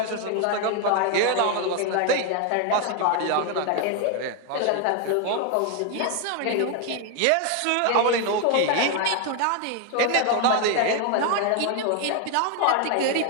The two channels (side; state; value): both; different; correlation 0.01